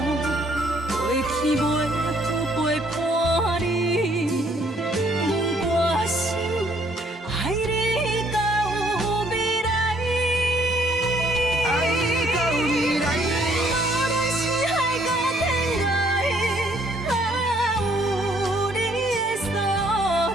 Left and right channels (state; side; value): normal; both; correlation 0.65